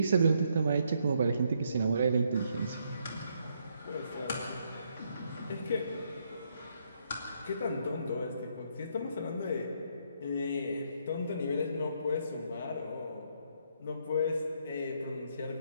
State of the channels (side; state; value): both; inverted; correlation -0.73